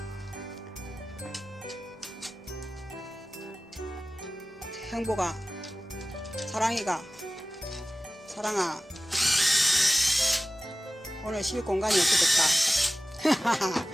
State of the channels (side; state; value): both; normal; correlation 0.96